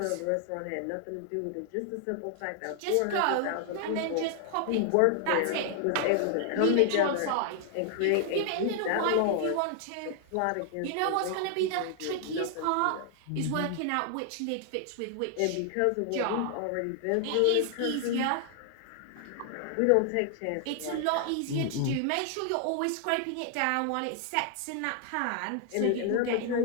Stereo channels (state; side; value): different; both; correlation 0.00